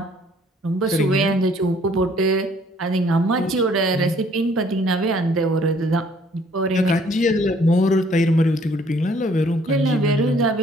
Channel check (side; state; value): both; normal; correlation 0.61